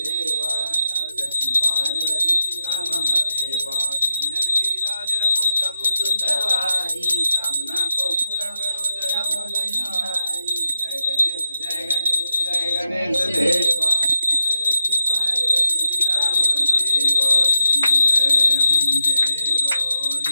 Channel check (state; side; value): inverted; both; correlation -0.87